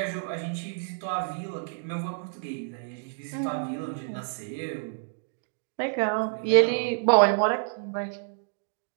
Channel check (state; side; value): silent; left; digital silence